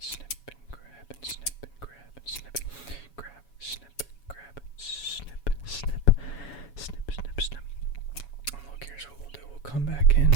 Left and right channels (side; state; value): right; late; 7.1 ms